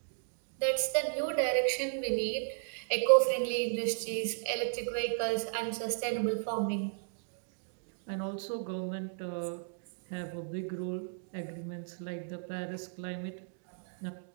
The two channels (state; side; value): silent; left; digital silence